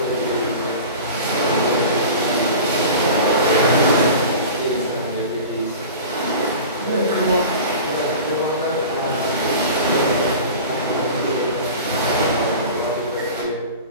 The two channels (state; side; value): inverted; both; correlation -0.36